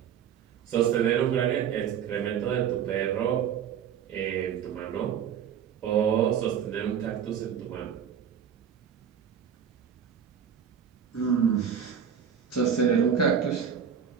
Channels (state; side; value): quieter; left; 8.1 dB